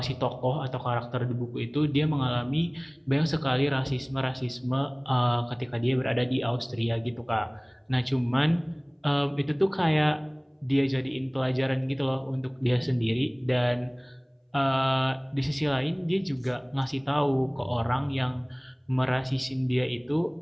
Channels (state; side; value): identical; both; correlation 1.00